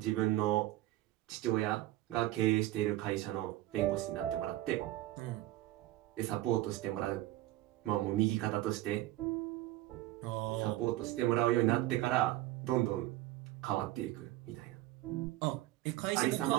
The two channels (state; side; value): quieter; left; 16.3 dB